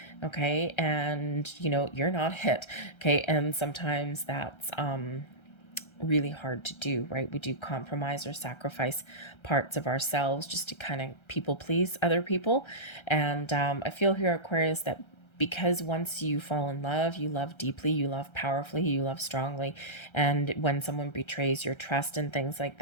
Okay. And, you're not it. Okay. And sometimes that's, really hard to do, right? We do compromise or sacrifice parts of ourselves just to kind of people please other people. And I feel here, Aquarius, that because once you fall in love, you love deeply, you love powerfully, you love strongly. And when someone betrays your trust and things like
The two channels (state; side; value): late; right; 1.3 ms